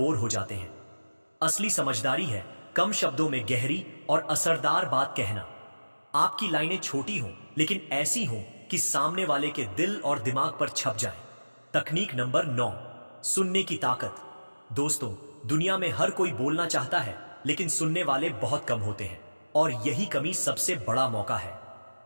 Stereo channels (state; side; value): inverted; both; correlation -1.00